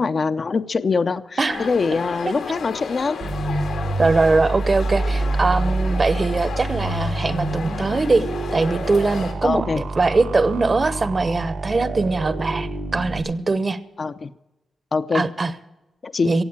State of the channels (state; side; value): normal; both; correlation 0.92